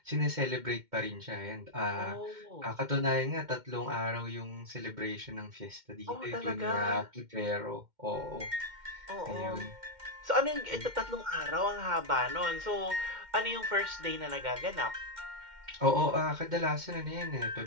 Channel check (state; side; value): late; left; 2.1 ms